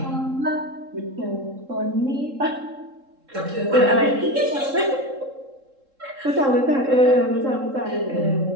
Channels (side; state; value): left; late; 3.7 ms